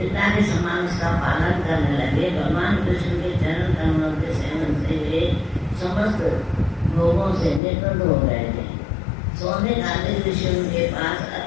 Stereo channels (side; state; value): right; drops out; at 7.6 s